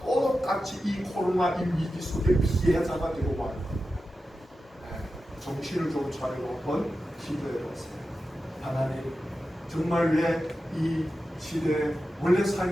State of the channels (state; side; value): normal; both; correlation 0.92